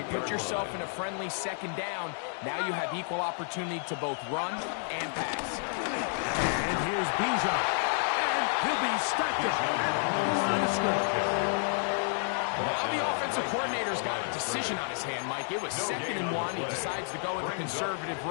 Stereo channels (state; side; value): silent; right; 57 dB below the other